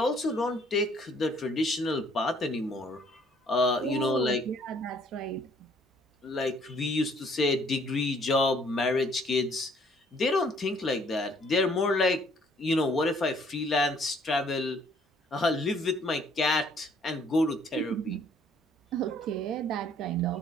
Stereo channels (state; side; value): normal; both; correlation 0.61